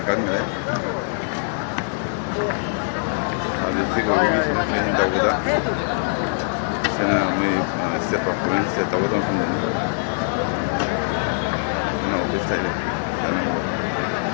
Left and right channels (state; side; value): silent; right; digital silence